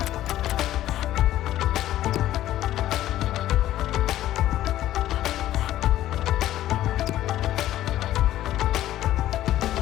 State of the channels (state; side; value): quieter; right; 13.5 dB